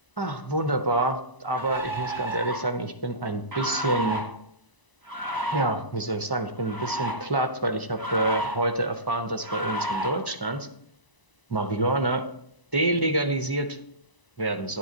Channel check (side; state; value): right; late; 1.0 ms